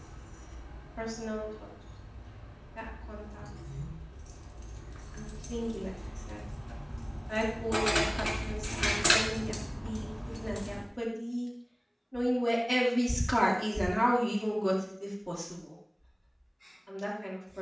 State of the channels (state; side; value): identical; both; correlation 1.00